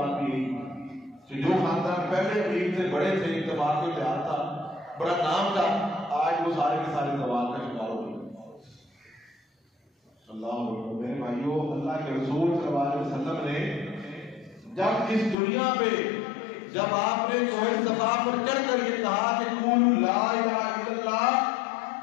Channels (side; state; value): right; drops out; at 15.4 s